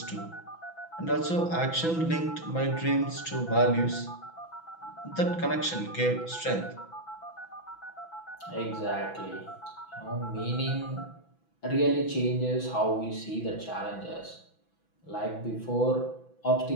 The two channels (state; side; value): late; right; 6.0 ms